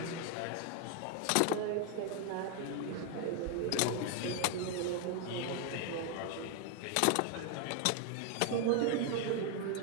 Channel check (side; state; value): both; different; correlation 0.00